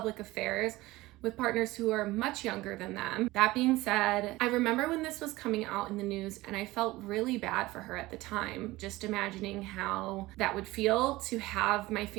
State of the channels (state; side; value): quieter; left; 19.2 dB